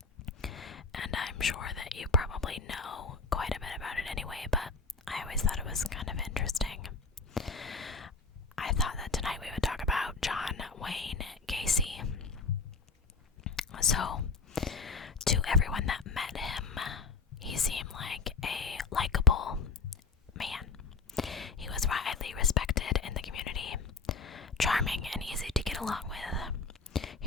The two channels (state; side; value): quieter; right; 4.4 dB